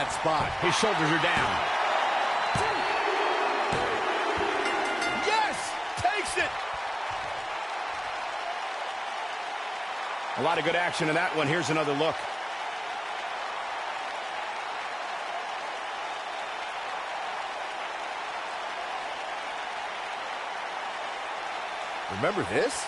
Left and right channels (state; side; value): identical; both; correlation 1.00